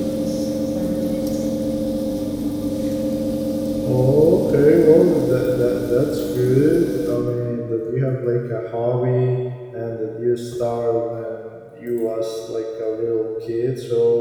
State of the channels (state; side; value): identical; both; correlation 1.00